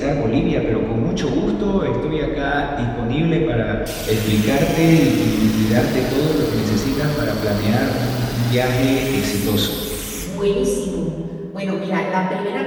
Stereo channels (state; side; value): identical; both; correlation 1.00